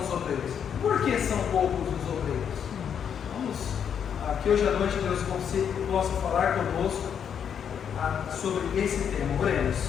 os obreiros? Por que são poucos os obreiros? Vamos, que hoje à noite Deus possa falar conosco sobre esse tema. Oremos.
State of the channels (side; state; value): right; quieter; 8.0 dB